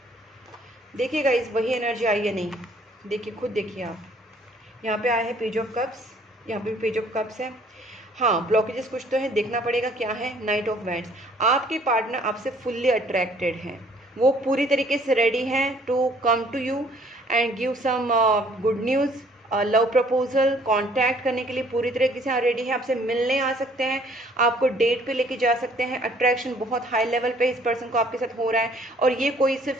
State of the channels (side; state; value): both; normal; correlation 0.59